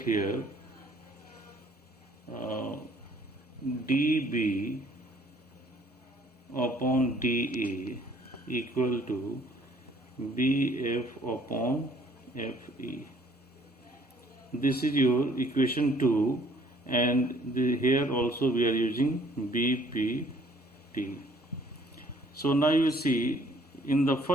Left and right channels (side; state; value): both; normal; correlation 0.59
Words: here DB upon DA equal to BF upon FE. This is your equation 2, and here also we are using BPT. So now you see in the